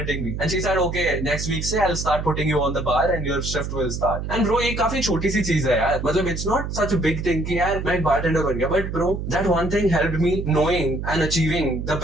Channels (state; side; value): noise; right; hum, 5 dB below the sound